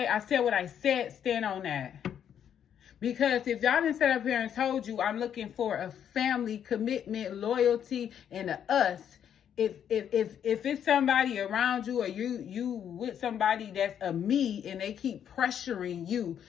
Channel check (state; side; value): quieter; right; 9.0 dB